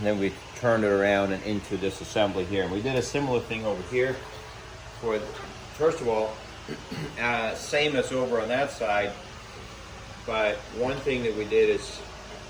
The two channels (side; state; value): both; identical; correlation 1.00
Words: then we turned it around and into this assembly here. And we did a similar thing over here. First of all, same as over on that side, but one thing that we did is